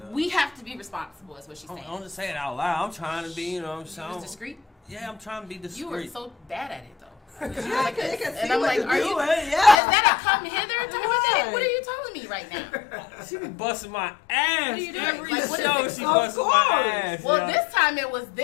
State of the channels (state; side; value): drops out; right; at 9.8 s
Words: we have to be responsible. Is what she's saying. I'm just saying it out loud. I'm trying to be, you know what I'm You saying? was discreet. Yeah, I'm trying to be discreet. You were so bad at it though. I can And I'm like, are you? Is that a come hither type of thing? What are you telling me right now? She be busting my ass. What are you doing? Every Like, what is show it? she Of busting my course. ass. Well, yeah. this time it was